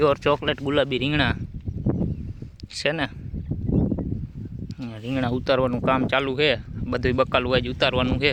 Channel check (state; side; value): identical; both; correlation 1.00